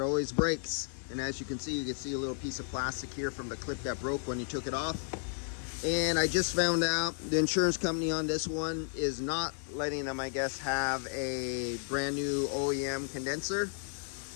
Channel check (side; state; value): right; silent; 56 dB below the other